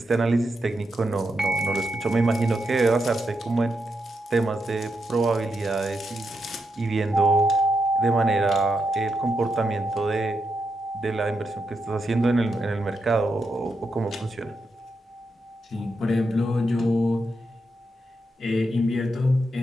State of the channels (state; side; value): normal; both; correlation 0.84